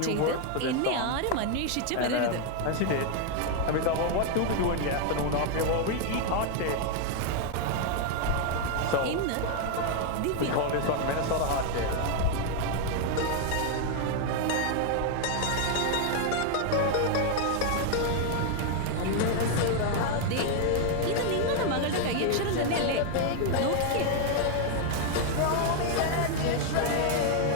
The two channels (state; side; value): different; both; correlation 0.00